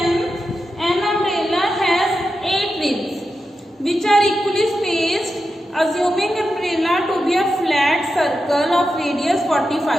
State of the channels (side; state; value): both; normal; correlation 0.89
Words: An umbrella has 8 ribs which are equally spaced, assuming umbrella to be a flat circle of radius